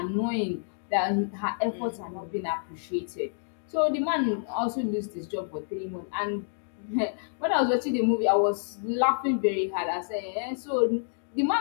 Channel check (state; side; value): silent; right; digital silence